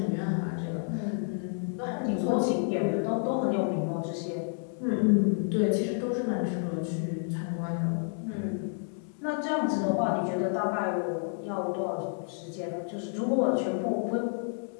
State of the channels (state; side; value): silent; right; 58 dB below the other